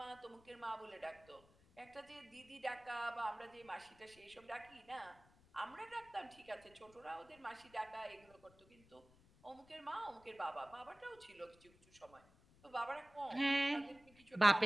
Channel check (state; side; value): noise; left; rumble, 26 dB below the sound